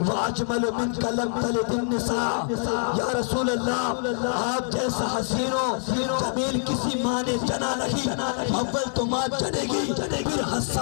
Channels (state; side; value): silent; right; 62 dB below the other